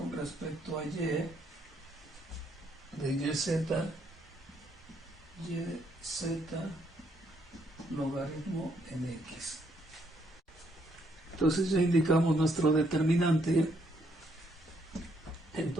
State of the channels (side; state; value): both; normal; correlation 0.72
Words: respecto a y de yz logaritmo en x. Entonces ya indicamos nuestro determinante.